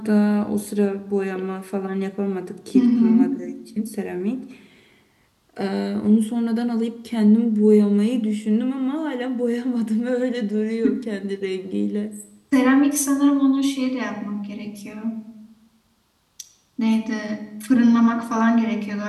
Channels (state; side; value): identical; both; correlation 1.00